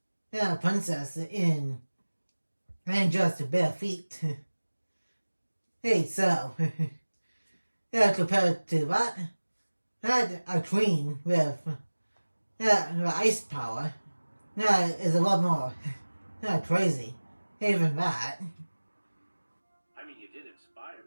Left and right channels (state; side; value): inverted; both; correlation -1.00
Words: princess in and just bare feet. Hey, so compared to that, a queen with ice power is a lot more crazy. Even that. I mean, you did inspire